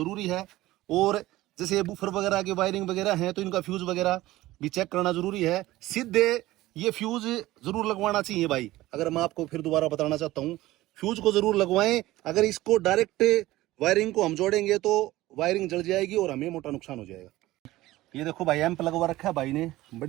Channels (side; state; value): left; quieter; 17.0 dB